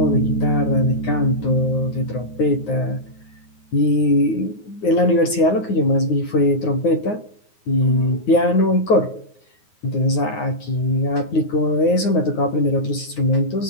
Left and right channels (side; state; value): right; late; 9.5 ms